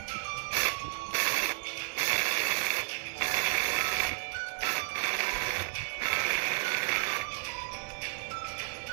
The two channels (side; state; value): left; silent; digital silence